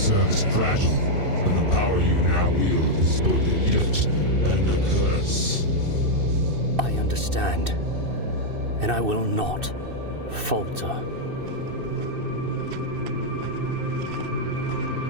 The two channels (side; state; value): left; late; 2.6 ms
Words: is fragile, and the power you now wield is both a gift and a curse. I understand, and I will not falter.